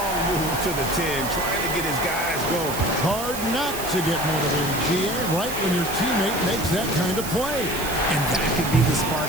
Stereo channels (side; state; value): right; noise; hiss, 8 dB below the sound